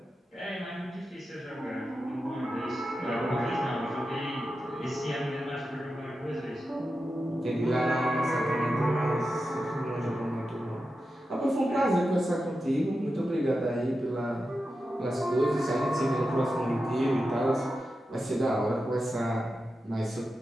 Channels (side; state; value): both; normal; correlation 0.90